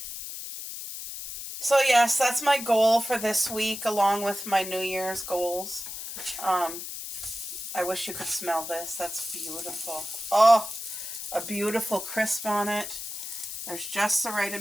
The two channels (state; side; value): noise; left; hiss, 8 dB below the sound